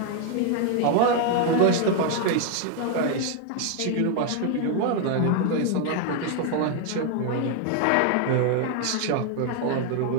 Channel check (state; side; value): different; both; correlation 0.00